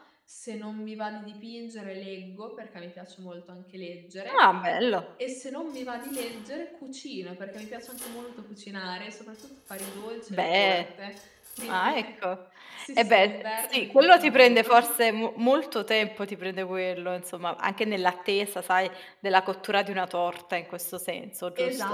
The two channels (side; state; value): both; identical; correlation 1.00